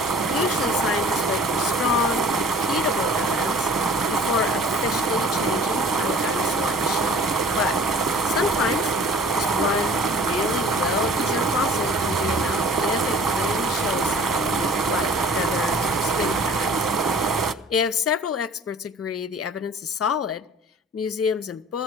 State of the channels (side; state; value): both; normal; correlation 0.48